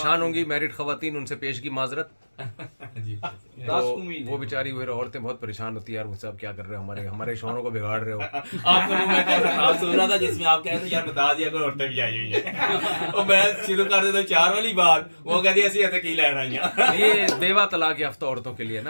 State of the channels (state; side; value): inverted; both; correlation -1.00